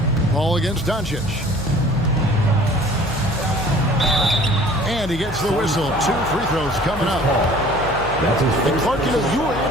Ball against Doncic. And he gets the whistle. 2 free throws coming up. And Clark, you know, you were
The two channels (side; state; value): left; noise; hum, 11 dB below the sound